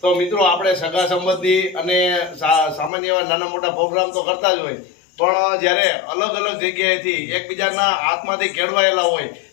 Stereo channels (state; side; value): drops out; right; at 2.9 s